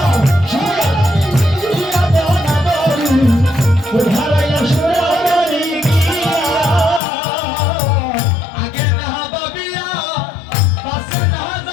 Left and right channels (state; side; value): drops out; right; at 7.0 s